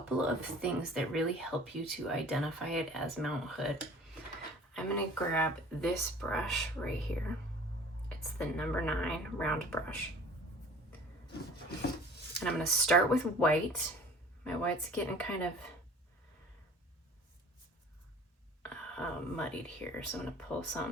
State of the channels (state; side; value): normal; both; correlation 0.46